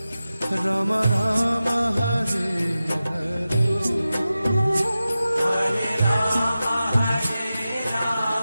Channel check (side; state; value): both; inverted; correlation -0.94